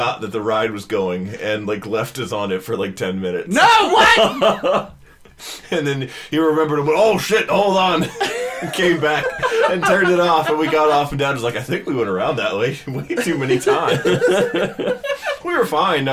that the ride was going and like left us on it for like 10 minutes. No, what? And then he remembered and went, "Oh shit, hold on." And came back and turned it off, and we got off, and Dad was like, "I think we went around that way too many times." We were fine.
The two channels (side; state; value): both; identical; correlation 1.00